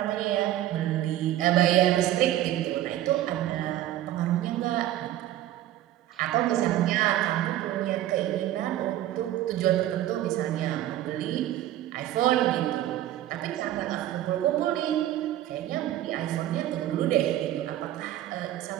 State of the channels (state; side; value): quieter; left; 13.4 dB